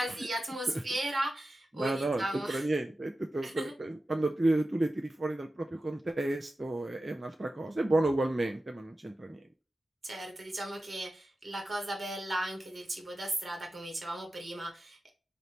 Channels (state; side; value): normal; both; correlation 0.93